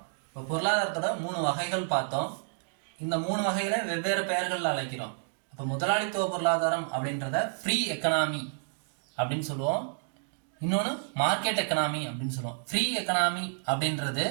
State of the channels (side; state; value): left; silent; digital silence